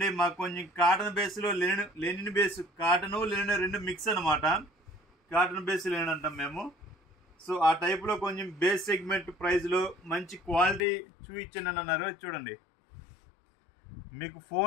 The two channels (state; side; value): drops out; right; at 10.8 s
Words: మాకు కొంచెం కాటన్ బేస్ లో లెనిన్ బేస్, కాటన్ లెనిన్ రెండు మిక్స్ అనమాట. కాటన్ బేస్ లెనిన్ అంటాం మేము. సో ఆ టైప్ లో కొంచెం బేస్ సెగ్మెంట్ ప్రైస్ లో మంచి క్వాలిటీ చూపించండి అన్నారు. చూడండి, మీకు